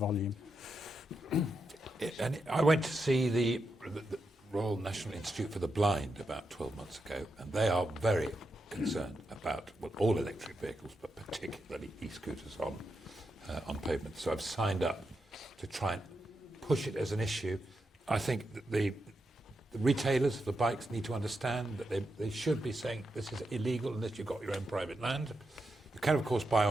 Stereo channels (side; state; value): both; normal; correlation 0.85